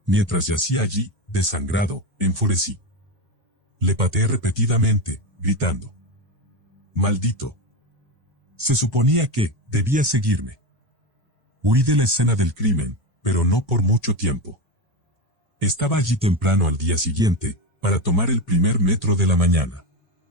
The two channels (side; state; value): left; late; 1.1 ms